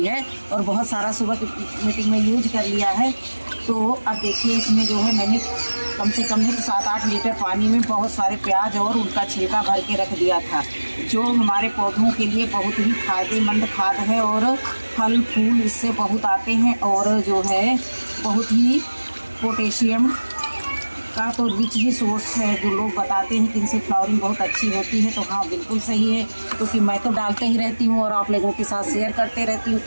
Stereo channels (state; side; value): inverted; both; correlation -1.00